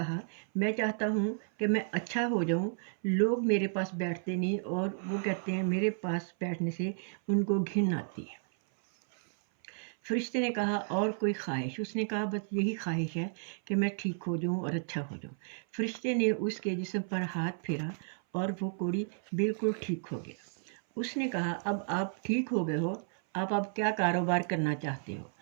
मैं चाहता हूँ कि मैं अच्छा हो जाऊँ। लोग मेरे पास बैठते नहीं और वो कहते हैं मेरे पास बैठने से उनको घिन आती है। फरिश्ते ने कहा, और कोई ख्वाहिश? उसने कहा, बस यही ख्वाहिश है कि मैं ठीक हो जाऊँ और अच्छा हो जाऊँ। फरिश्ते ने उसके जिस्म पर हाथ फेरा और वो कोढ़ी बिल्कुल ठीक हो गया। उसने कहा, अब आप ठीक हो गए हो, आप क्या कारोबार करना चाहते हो?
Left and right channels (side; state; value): left; silent; 56 dB below the other